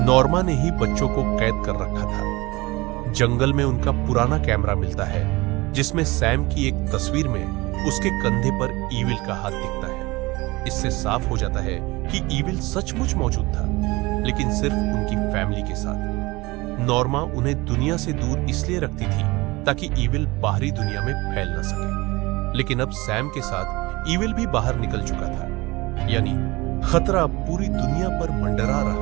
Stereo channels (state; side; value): quieter; left; 22.2 dB